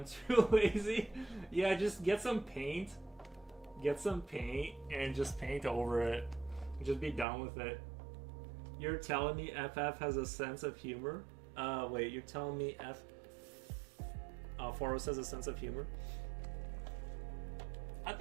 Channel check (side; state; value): left; drops out; at 7.2 s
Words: too lazy. Yeah, just get some paint. Get some paint and just paint over it. Just be done with it. You're telling me FF has a sense of humor? Wait, you're telling me Foros has a sense of humor? I